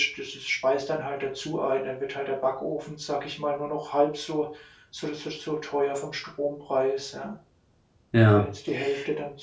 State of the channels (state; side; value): identical; both; correlation 1.00